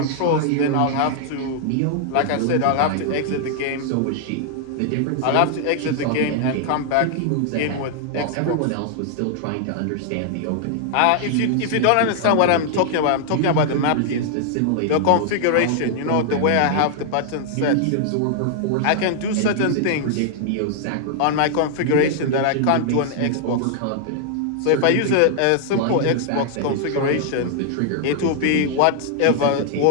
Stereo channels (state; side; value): different; both; correlation 0.00